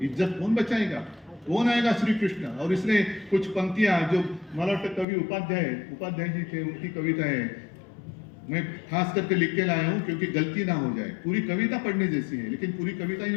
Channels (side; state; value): right; drops out; at 5.1 s